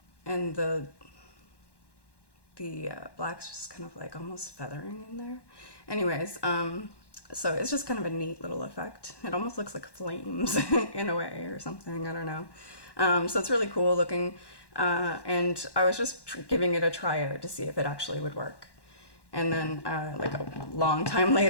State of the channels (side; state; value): right; late; 1.1 ms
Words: and the black's just kind of like almost feathering in there. Anyways, so it's just kind of a neat little effect. It almost looks like flames in a way or something, I don't know. So it's really cool looking, and I was just giving it a try out to see if it actually would work. And then like a long time